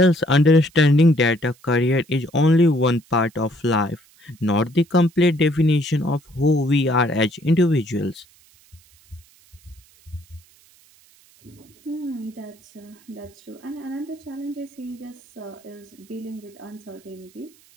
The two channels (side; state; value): right; noise; hiss, 29 dB below the sound